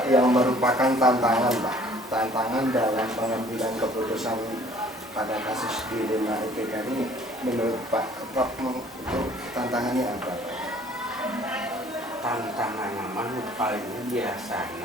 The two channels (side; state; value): both; normal; correlation 0.55